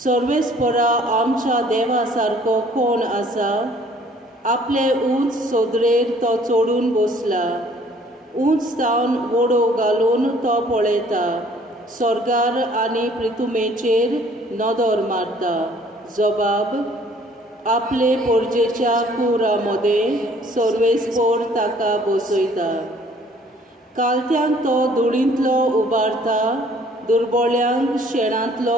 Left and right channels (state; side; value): normal; both; correlation 0.57